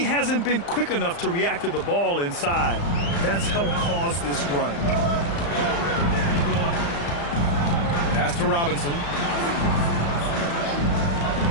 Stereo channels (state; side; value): late; right; 35 ms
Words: hasn't been quick enough to react to the ball inside. That's helped cause this run. Pass to Robinson.